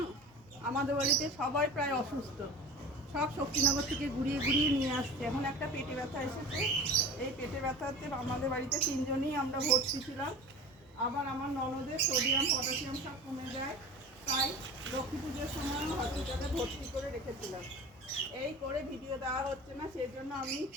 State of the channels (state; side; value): normal; both; correlation 0.35